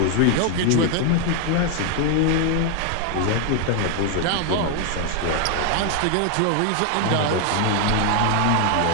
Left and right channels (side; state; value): both; different; correlation 0.00